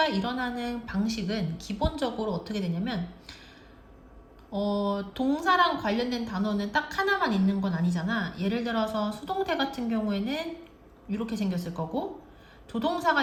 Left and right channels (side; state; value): both; identical; correlation 1.00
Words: 일어나는 방식은 기본적으로 어떻게 되냐면 동사랑 관련된 단어는 딱 하나만 있는 건 아니잖아. 예를 들어서 수동태 같은 경우에는 이렇게 생겼을 거고,